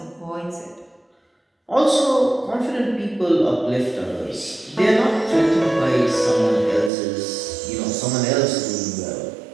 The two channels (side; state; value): left; drops out; at 6.9 s